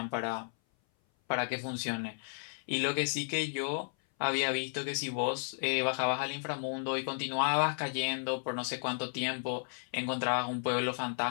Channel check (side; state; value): right; silent; 56 dB below the other